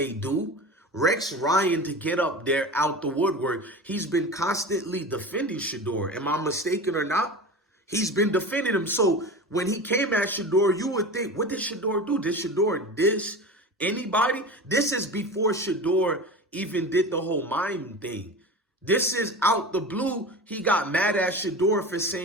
do? Rex Ryan, to get up there out the woodwork, he's been constantly defending Shedeur. Am I mistaken or not? He's been defending him. So when he came at Shedeur, you would think, what did Shedeur do? Did Shedeur diss anybody? This is before Shedeur even did the whole mime thing. This is out the blue. He got mad at Shedeur for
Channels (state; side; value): normal; both; correlation 0.30